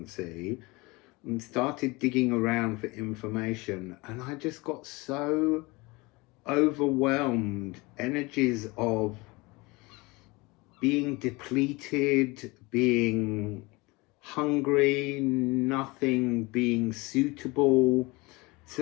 and started digging around for information, and I just got so overwhelmed. Energies of being depleted, being hungry, nothing being suitable. It's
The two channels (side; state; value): right; quieter; 24.4 dB